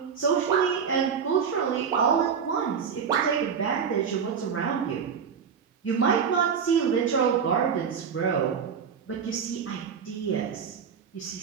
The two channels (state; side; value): quieter; left; 6.8 dB